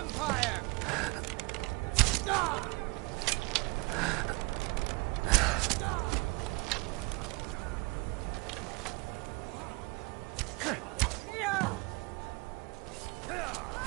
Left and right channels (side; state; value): left; quieter; 26.7 dB